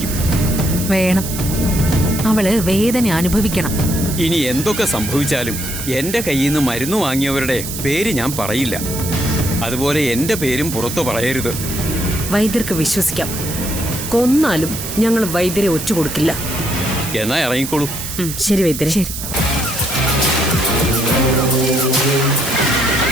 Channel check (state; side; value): noise; right; hiss, 7 dB below the sound